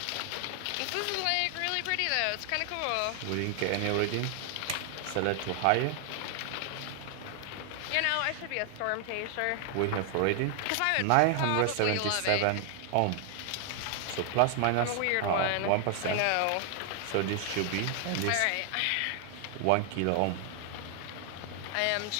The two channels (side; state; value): both; different; correlation 0.00